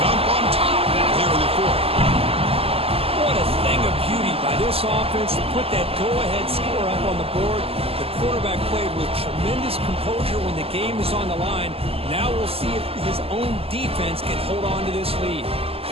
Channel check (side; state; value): left; late; 0.28 ms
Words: on top now here in the fourth. What a thing of beauty by this offense to put that go-ahead score up on the board. The quarterback played with tremendous composure when the game is on the line. Now we'll see if his own defense can hold on to this lead.